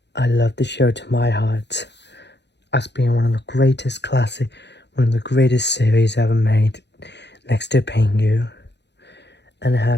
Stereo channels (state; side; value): late; right; 0.50 ms